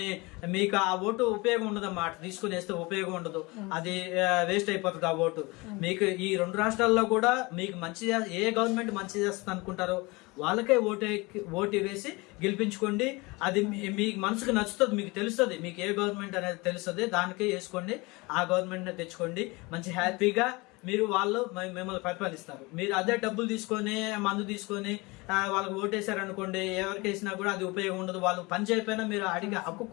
మీకు ఆ ఓటు ఉపయోగం ఉండదమ్మా. తీసుకుని వేస్తే ఉపయోగం ఉండదు, అది వేస్ట్ అయిపోతుంది ఆ ఓటు. మీకు ఈ 2 రాష్ట్రాల్లో కూడా మీకు ఏ గవర్నమెంట్ మంచి చేస్తుంది అనుకుంటారో వాళ్ళకే ఓటు వేసి గెలిపించుకోండి. అది మీకు మనసుకు నచ్చుతుంది, మీకు తెలుస్తుంది, మీకు ఏ గవర్నమెంట్ అనేది తెలుస్తుంది, దానికే వేసుకోండి. ఆ గవర్నమెంట్ తెచ్చుకోండి. మంచి హ్యాపీగా వాళ్ళు మిమ్మల్ని పరిపాలిస్తారు. మీరు అదే డబ్బులు తీసుకొని, మందు తీసుకొని వాళ్ళకి ఓటేశారనుకోండి, ఎవరికి వేసినా కూడా అది ఉపయోగం ఉండదు. వాళ్ళు పని చేయకపోయినా మీరు అడిగే హక్కు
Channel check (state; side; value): quieter; right; 24.7 dB